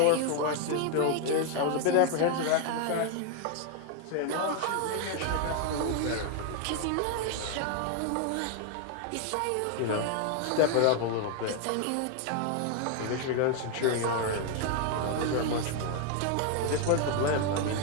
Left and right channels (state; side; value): different; both; correlation 0.00